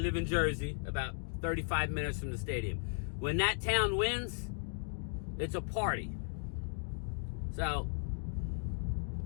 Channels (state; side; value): silent; right; 54 dB below the other